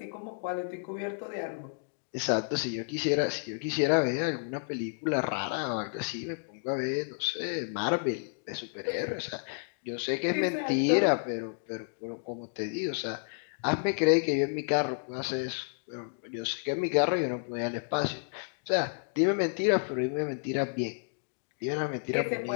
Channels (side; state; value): right; silent; digital silence